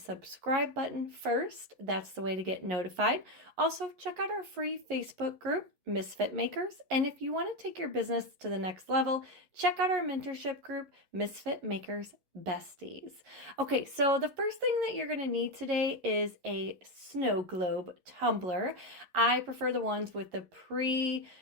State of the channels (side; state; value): left; late; 11 ms